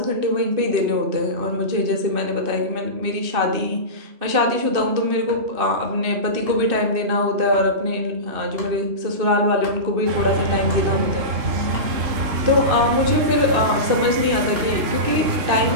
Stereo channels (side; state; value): left; late; 2.6 ms